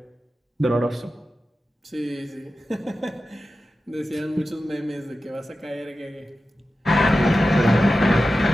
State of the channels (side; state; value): both; normal; correlation 0.93